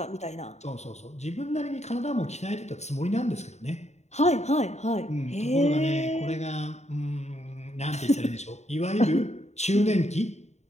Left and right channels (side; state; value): right; late; 0.32 ms